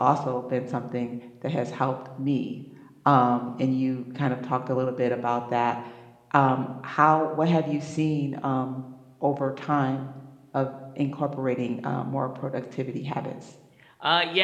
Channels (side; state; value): both; identical; correlation 1.00